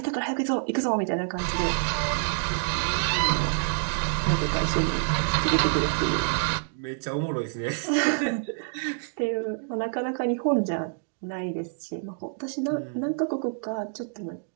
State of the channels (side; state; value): left; silent; digital silence